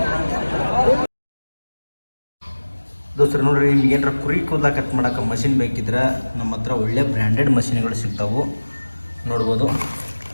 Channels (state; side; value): inverted; both; correlation -1.00